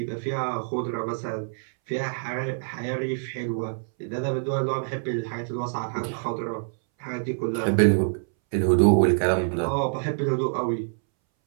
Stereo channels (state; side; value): silent; left; 61 dB below the other